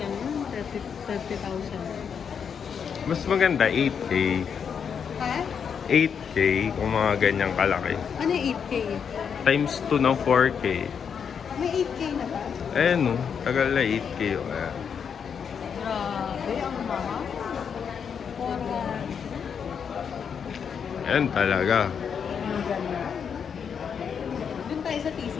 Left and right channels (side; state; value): right; quieter; 7.0 dB